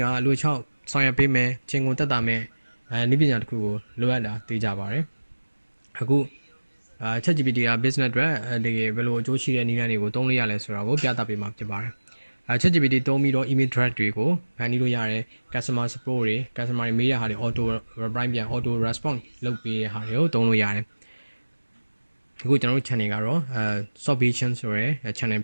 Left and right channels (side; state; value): both; inverted; correlation -1.00